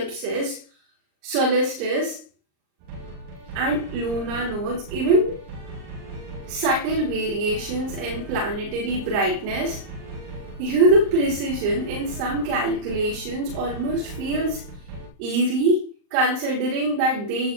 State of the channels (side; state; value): left; late; 39 ms